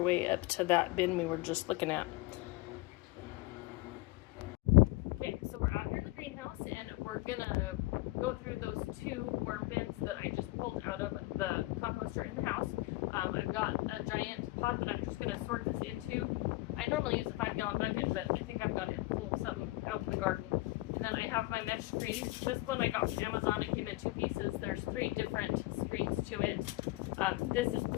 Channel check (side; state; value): right; quieter; 20.7 dB